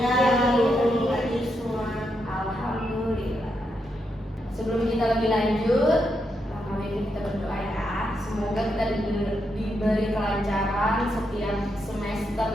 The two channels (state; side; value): normal; both; correlation 0.82